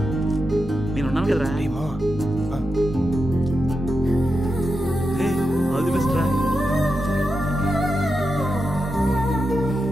నేను ఉన్నాను కదరా ఆల్ ది బెస్ట్ రా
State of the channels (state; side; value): normal; both; correlation 0.88